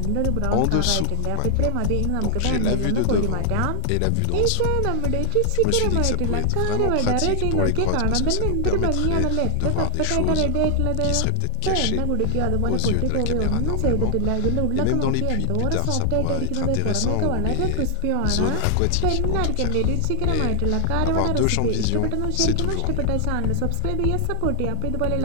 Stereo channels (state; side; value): different; both; correlation 0.00